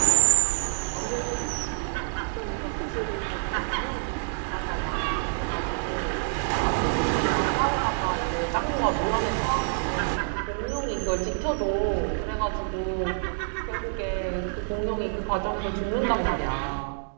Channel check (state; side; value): silent; left; digital silence